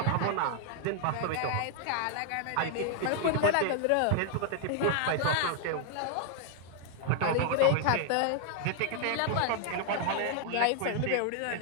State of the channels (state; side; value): different; both; correlation 0.00